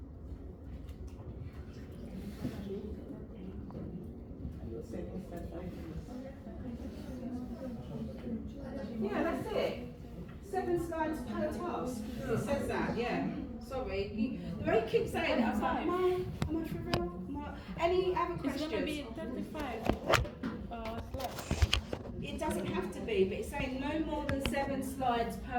Yeah, that's it. 7 slides per task. It says that, yeah. Sorry. The way you keep saying it, I was like, am I for real? Any other questions? It's gonna be 35 slides. It doesn't have to be, but it's saying no more than 7 slides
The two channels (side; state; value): both; identical; correlation 1.00